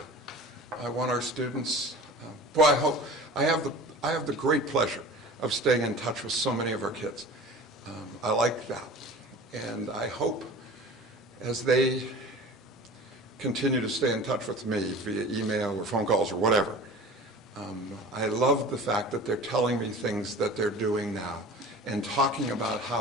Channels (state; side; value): normal; both; correlation 0.39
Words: I want our students, I have the great pleasure of staying in touch with so many of our kids. I like that. And I hope as they continue to stay in touch with me via email or phone calls or whatever, I love the fact that they're telling me things that they're doing now and talking about